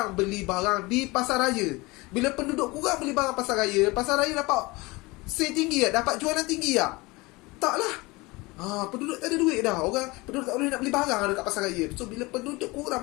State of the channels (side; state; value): right; quieter; 23.3 dB